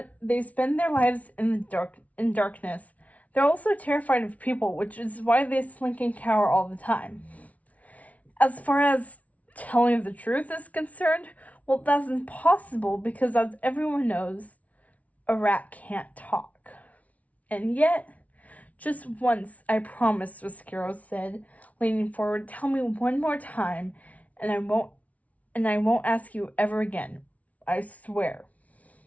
their lives in darkness. They're also terrified of people, which is why they slink and cower all the time. As far as telling the truth is concerned, well, that's impossible because, as everyone knows, a rat can't talk. And yet, just once, I promise, Roscuro said, leaning forward. "Tell me one more time, and I won't ask you ever again. I swear."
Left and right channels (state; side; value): late; right; 0.068 ms